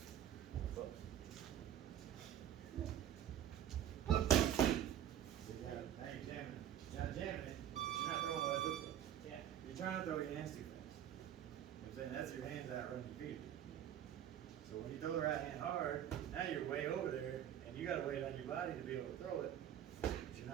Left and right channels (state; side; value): quieter; left; 10.6 dB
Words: See, now you're jamming, you're not jamming it, but you're not throwing what I look for. Yeah. You're trying to throw your hands too fast. You know what I'm saying? That's your hands out running your feet. So when you throw the right hand hard, now you're way over there, and you gotta wait on your body to be able to throw it. But you're